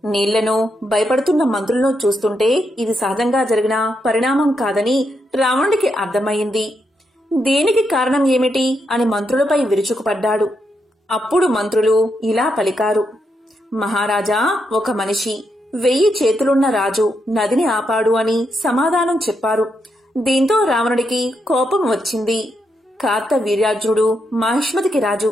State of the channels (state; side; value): normal; both; correlation 0.81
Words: నీళ్లను భయపడుతున్న మంత్రులను చూస్తుంటే ఇది సహజంగా జరిగిన పరిణామం కాదని రావణుడికి అర్థమయ్యింది. దీనికి కారణం ఏమిటి అని మంత్రులపై విరుచుకుపడ్డాడు. అప్పుడు మంత్రులు ఇలా పలికారు, మహారాజా, ఒక మనిషి 1000 చేతులున్న రాజు నదిని ఆపాడు అని సమాధానం చెప్పారు. దీంతో రావణుడికి కోపం వచ్చింది. కార్తవీర్యార్జునుడు మాహిష్మతికి రాజు,